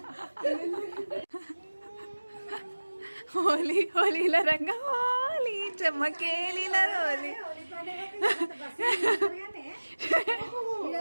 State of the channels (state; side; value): inverted; both; correlation -1.00